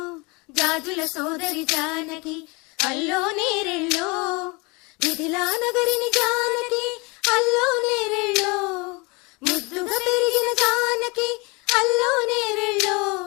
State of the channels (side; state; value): right; quieter; 27.9 dB